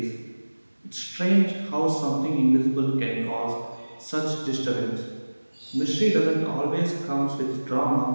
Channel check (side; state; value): both; inverted; correlation -1.00